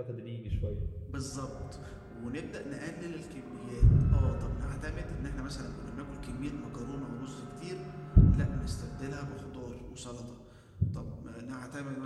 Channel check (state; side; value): identical; both; correlation 1.00